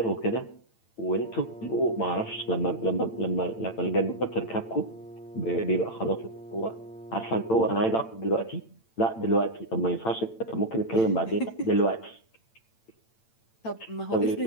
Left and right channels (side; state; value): right; late; 8.9 ms